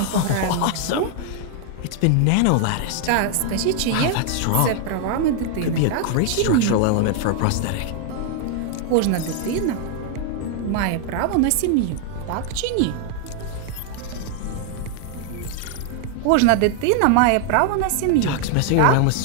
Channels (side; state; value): both; different; correlation 0.00